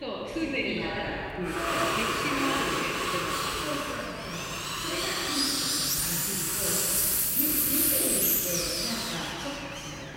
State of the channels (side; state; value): both; identical; correlation 1.00